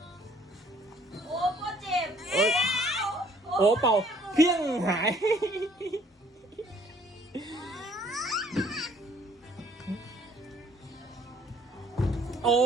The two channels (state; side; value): normal; both; correlation 0.60